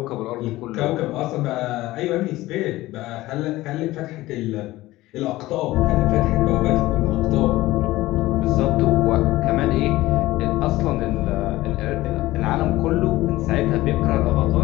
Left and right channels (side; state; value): right; quieter; 17.6 dB